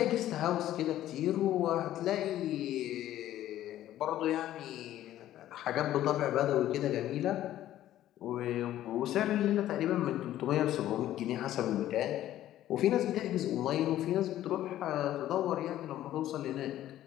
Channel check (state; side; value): quieter; right; 13.1 dB